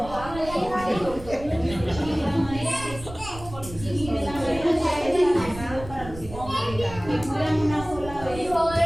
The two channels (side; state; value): right; noise; rumble, 14 dB below the sound